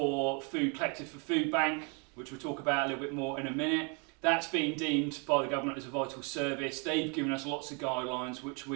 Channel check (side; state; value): left; quieter; 34.4 dB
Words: food collected for Food Bank, which we'll talk about a little bit more in a minute. That's been deemed by the government as a vital service. They've given us lots of guidelines which